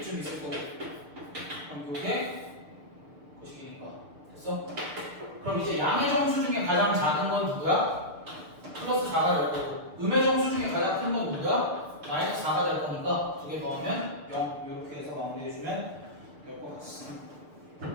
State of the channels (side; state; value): left; late; 6.7 ms